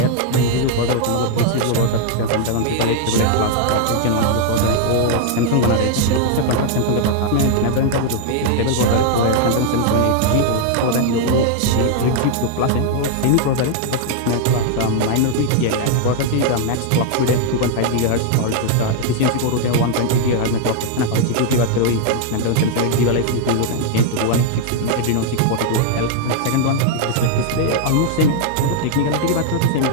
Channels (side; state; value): both; different; correlation 0.00